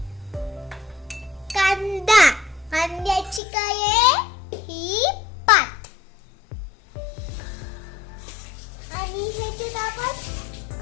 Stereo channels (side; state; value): right; drops out; at 3.4 s